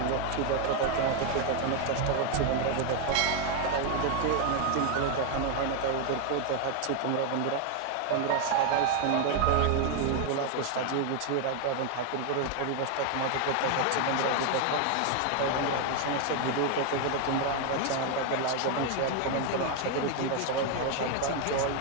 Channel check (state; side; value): different; both; correlation 0.01